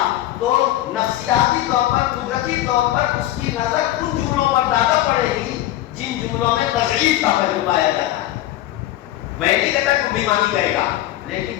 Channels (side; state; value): right; quieter; 14.5 dB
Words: تو نفسیاتی طور پر، قدرتی طور پر اس کی نظر ان جملوں پر زیادہ پڑے گی جن جملوں میں تضعیف کا پہلو پایا جاتا ہے۔ میں نہیں کہتا کہ بھی مانی کرے گا، لیکن